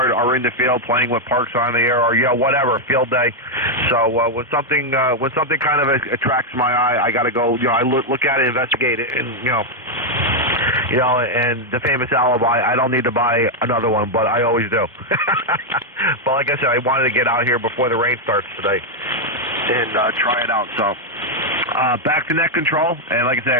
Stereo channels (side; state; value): both; normal; correlation 0.00